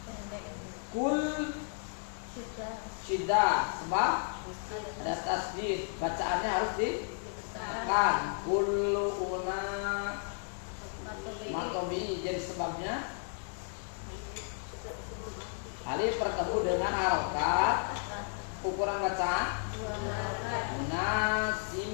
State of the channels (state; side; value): silent; right; 55 dB below the other